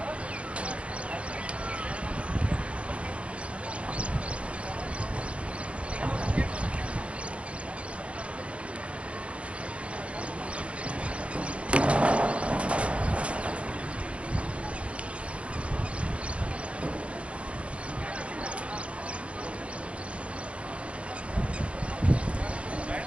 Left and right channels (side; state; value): left; late; 0.061 ms